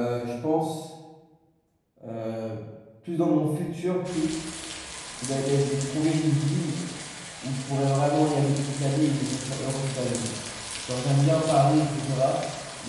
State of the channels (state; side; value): identical; both; correlation 1.00